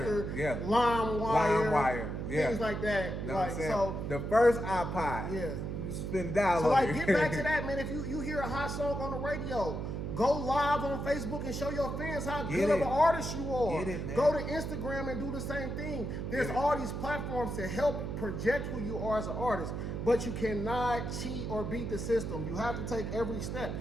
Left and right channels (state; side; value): noise; right; hum, 4 dB below the sound